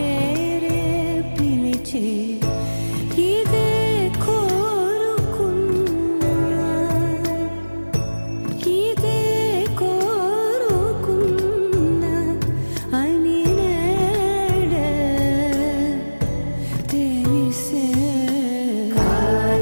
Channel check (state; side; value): inverted; both; correlation -1.00